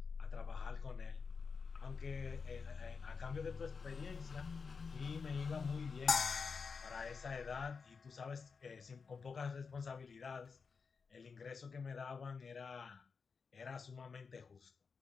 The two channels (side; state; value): right; quieter; 5.3 dB